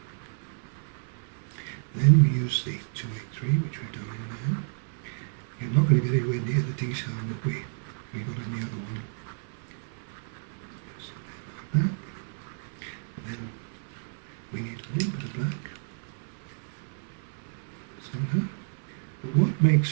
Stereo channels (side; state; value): left; silent; 57 dB below the other